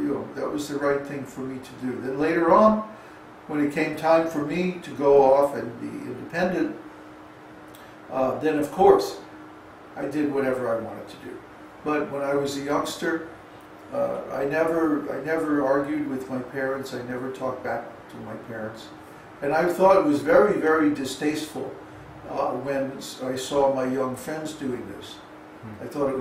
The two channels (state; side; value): identical; both; correlation 1.00